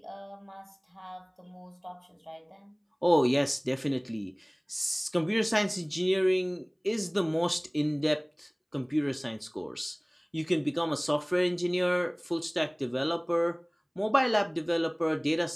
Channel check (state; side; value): identical; both; correlation 1.00